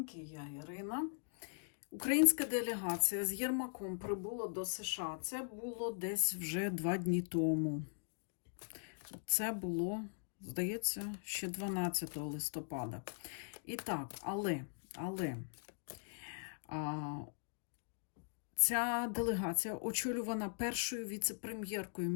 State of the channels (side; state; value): right; silent; digital silence